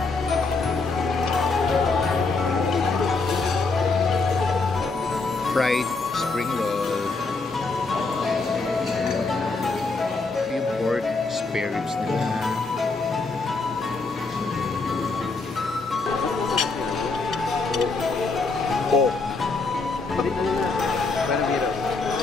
Fried spring roll. Yung pork spare ribs nila.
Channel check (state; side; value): quieter; right; 3.9 dB